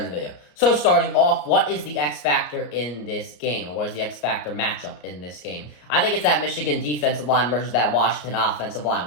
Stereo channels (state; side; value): late; right; 34 ms